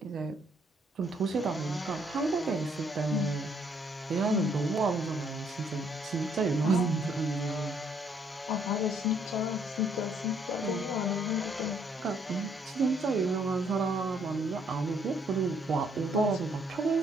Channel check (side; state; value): both; normal; correlation 0.68